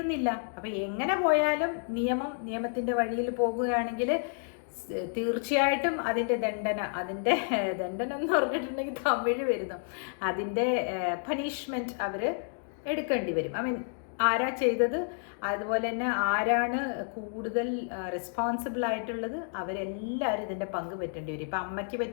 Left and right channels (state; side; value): silent; right; 58 dB below the other